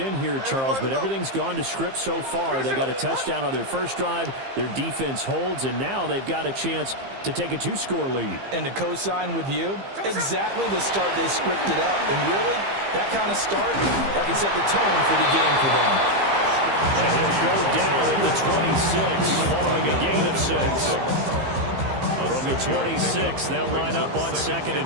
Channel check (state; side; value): late; left; 15 ms